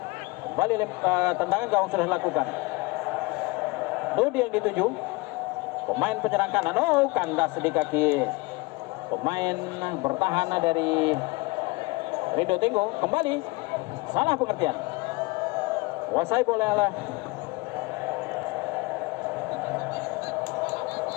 Kembali tendangan gawang sudah dilakukan. Dodi yang dituju pemain penyerang kanan. Kandas di kaki pemain bertahan dari Rido Tenggung. Kembali salah pengertian. Kuasai bola oleh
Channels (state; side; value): quieter; right; 24.7 dB